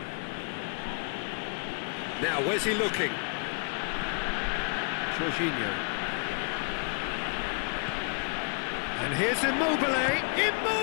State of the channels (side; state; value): right; quieter; 38.6 dB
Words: Now, where's he looking? Jorginho. And here's Immobile.